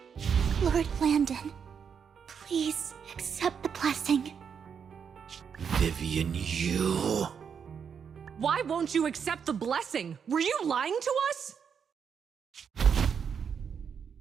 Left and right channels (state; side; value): quieter; left; 7.0 dB